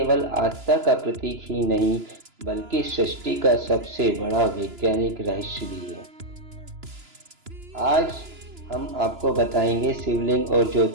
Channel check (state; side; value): late; left; 2.9 ms